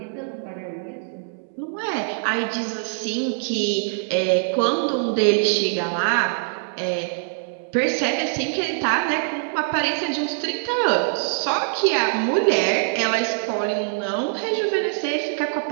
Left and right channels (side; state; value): left; silent; 63 dB below the other